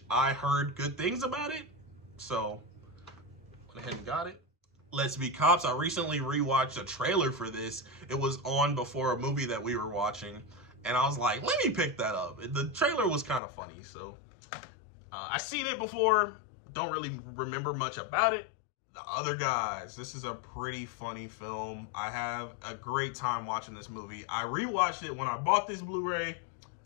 I heard good things about it, so went ahead and got it. Let's Be Cops. I recently rewatched a trailer for this. It was on before a movie that we were watching, and I was like, let me pick that up. The trailer was kind of funny, so I've seen it before. Don't really remember much about it. The Other Guys. This is a pretty funny film. I have a great time watching this movie. I rewatched it when I bought this Blu-ray.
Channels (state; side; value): drops out; right; at 13.4 s